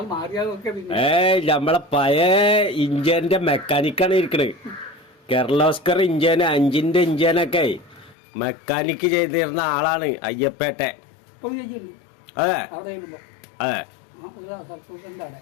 നമ്മളെ പഴയ ഇഞ്ചിന്റെ മെക്കാനിക്കാണ് ഇരിക്കണേ. കിർലോസ്കർ ഇഞ്ചിന് 5-ന്റെ ഇഞ്ചിനൊക്കെ മെക്കാനിക്ക് ചെയ്തിരുന്ന ആളാണ് അയ്യപ്പേട്ടെ. അതെ അതെ.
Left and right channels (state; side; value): drops out; right; at 8.2 s